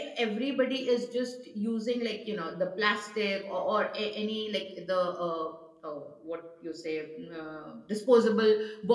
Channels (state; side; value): identical; both; correlation 1.00